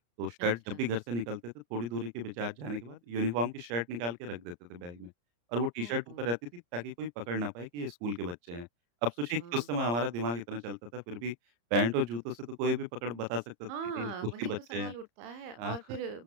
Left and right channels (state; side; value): late; left; 34 ms